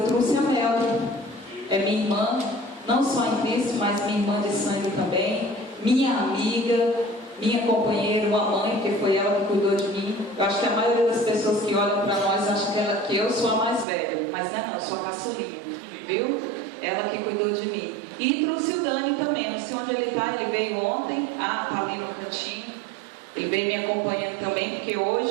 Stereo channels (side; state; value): left; drops out; at 13.9 s